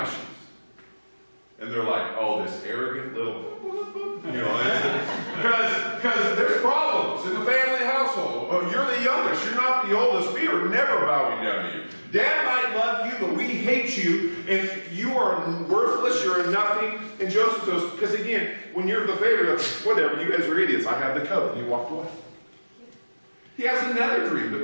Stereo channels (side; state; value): both; inverted; correlation -1.00